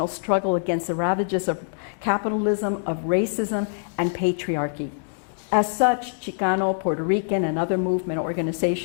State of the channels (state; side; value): silent; right; digital silence